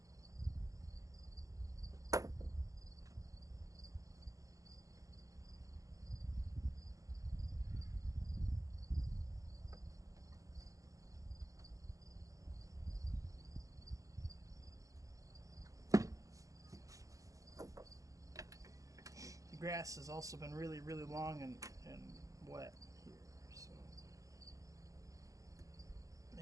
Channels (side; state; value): left; late; 0.16 ms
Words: The grass has also been really, really long and wet here, so